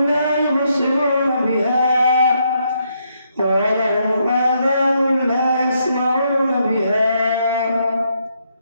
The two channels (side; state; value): both; inverted; correlation -0.76